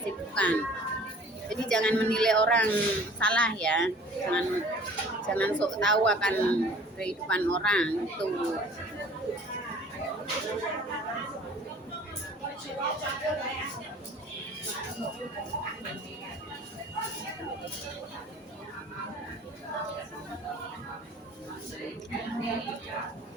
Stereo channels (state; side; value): normal; both; correlation 0.49